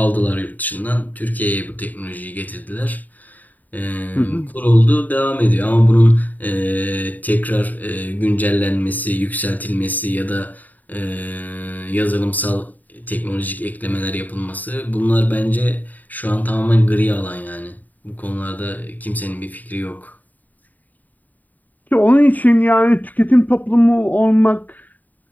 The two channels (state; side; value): late; right; 0.081 ms